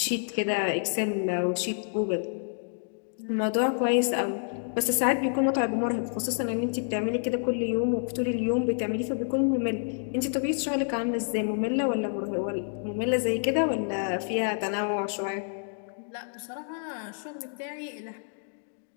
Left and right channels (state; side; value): silent; right; digital silence